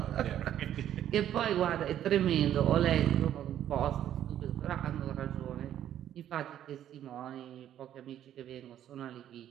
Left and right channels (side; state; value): left; quieter; 11.1 dB